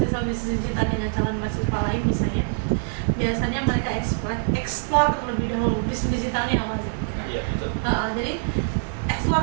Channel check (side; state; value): left; silent; 62 dB below the other